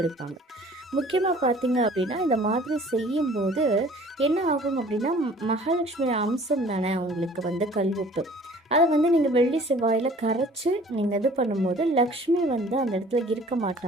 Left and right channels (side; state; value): both; normal; correlation 0.51